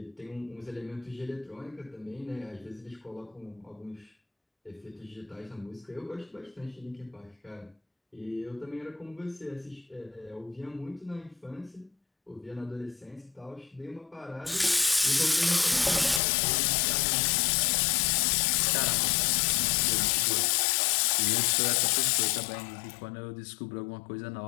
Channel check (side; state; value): right; drops out; at 16.2 s